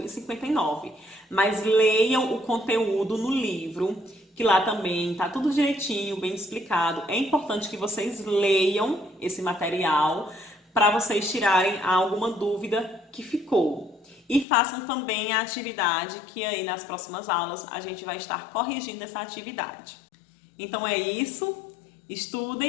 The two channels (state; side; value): drops out; right; at 14.5 s